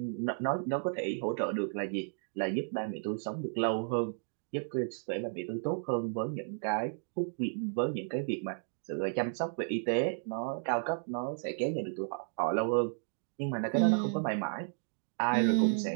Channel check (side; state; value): left; silent; digital silence